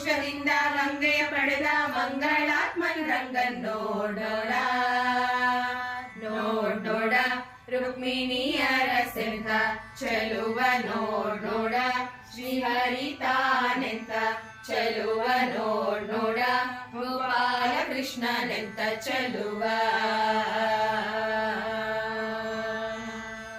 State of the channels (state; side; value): identical; both; correlation 1.00